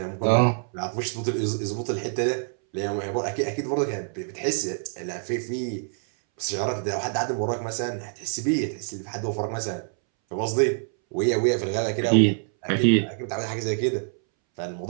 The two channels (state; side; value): silent; left; 61 dB below the other